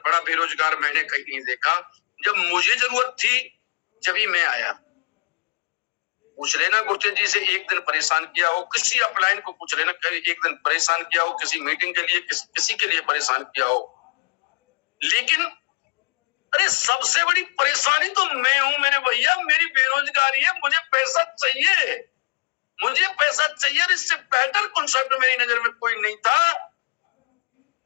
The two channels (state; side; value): quieter; right; 30.7 dB